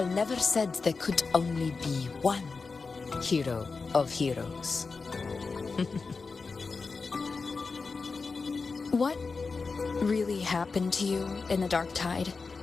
never said there could only be one hero of heroes. What really happened to you in the dark tide?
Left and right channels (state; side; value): quieter; right; 4.4 dB